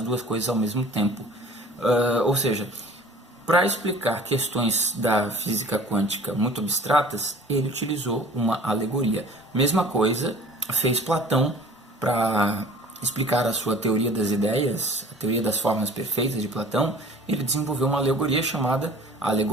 duas coisas ao mesmo tempo. Ou seja, para explicar questões da física quântica muito abstratas, ele utilizou uma alegoria. Mesma coisa fez Platão para explicar a sua teoria das ideias, a teoria das formas perfeitas de Platão. Ele desenvolveu uma alegoria chamada a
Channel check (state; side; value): normal; both; correlation 0.47